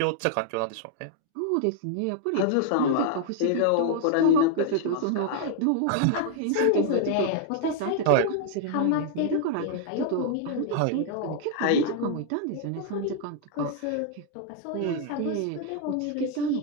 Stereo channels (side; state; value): both; different; correlation 0.00